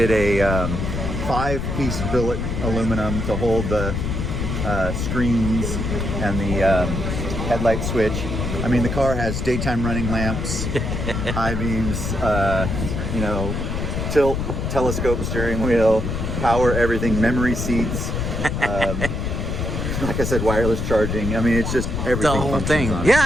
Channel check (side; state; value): left; noise; rumble, 2 dB below the sound